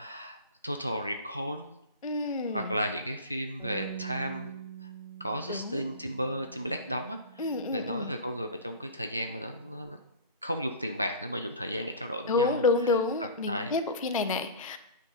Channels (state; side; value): inverted; both; correlation -0.33